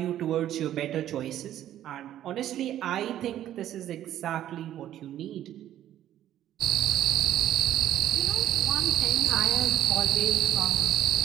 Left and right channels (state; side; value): quieter; left; 12.0 dB